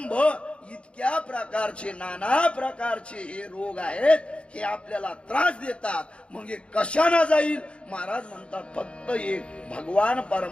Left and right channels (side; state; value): right; late; 0.059 ms